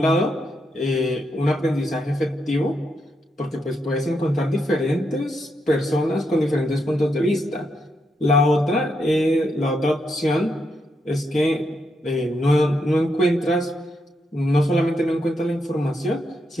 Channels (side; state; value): both; normal; correlation 0.81